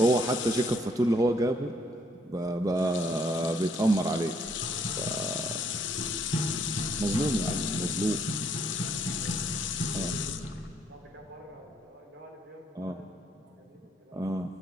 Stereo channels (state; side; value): normal; both; correlation 0.68